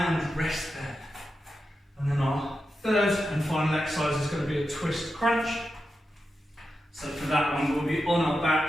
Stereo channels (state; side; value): normal; both; correlation 0.89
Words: rest there. And then our third and final exercise is going to be a twist crunch. So for that one, we'll be on our